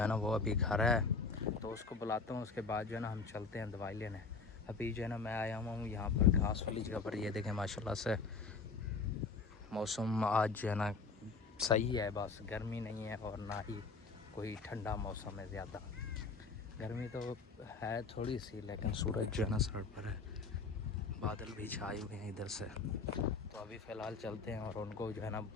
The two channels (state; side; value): quieter; right; 4.5 dB